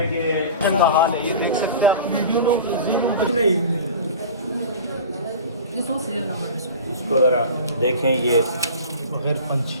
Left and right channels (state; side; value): inverted; both; correlation -0.37